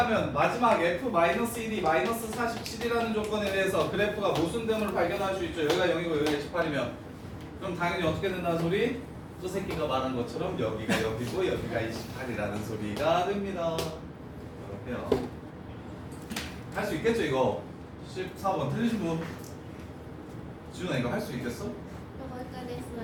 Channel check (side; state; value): both; identical; correlation 1.00